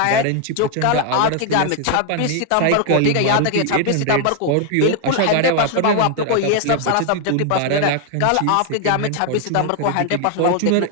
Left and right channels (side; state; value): both; different; correlation 0.00